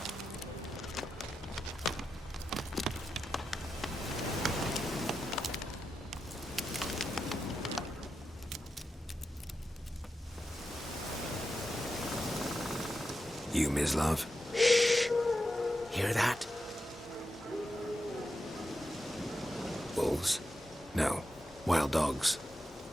You, Mislav? Shh! Hear that? Wolves? No. Wild dogs.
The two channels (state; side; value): normal; both; correlation 0.89